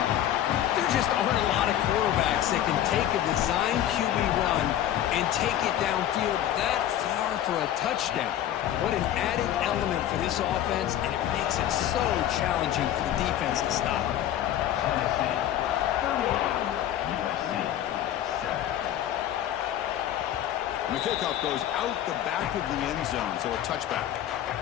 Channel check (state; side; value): quieter; right; 11.6 dB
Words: There just aren't a lot of quarterbacks that can take a design QB run and take it downfield that far for a touchdown. What an added element for this offense, and it makes it so challenging for the defense to stop. The kickoff goes out the back of the end zone, so a touchback.